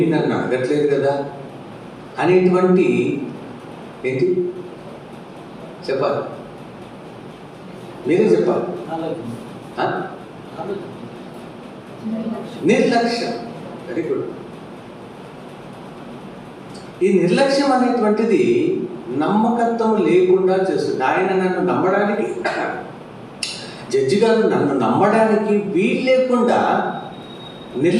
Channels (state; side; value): identical; both; correlation 1.00